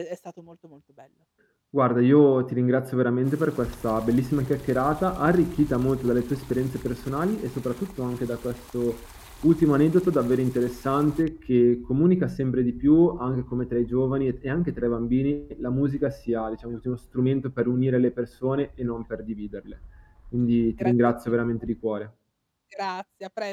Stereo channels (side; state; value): both; identical; correlation 1.00